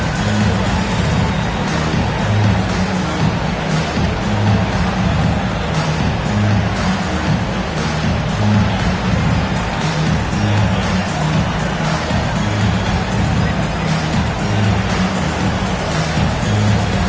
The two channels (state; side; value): identical; both; correlation 1.00